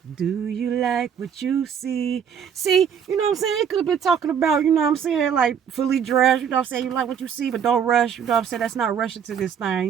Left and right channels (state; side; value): quieter; left; 7.7 dB